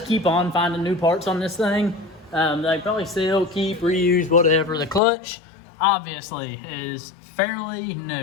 keep on finding new parts on this thing. They probably sell, keep, reuse, whatever. The clutch, obviously, is fairly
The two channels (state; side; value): drops out; right; at 5.0 s